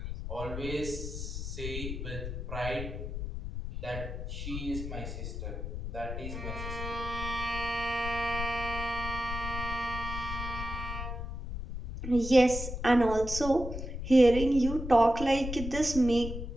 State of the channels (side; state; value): left; noise; rumble, 6 dB below the sound